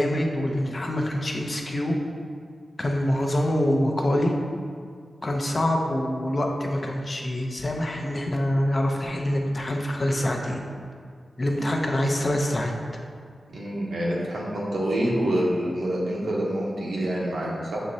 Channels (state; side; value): normal; both; correlation 0.94